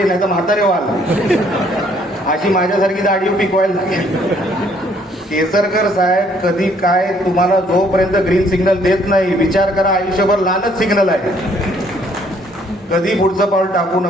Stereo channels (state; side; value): normal; both; correlation 0.64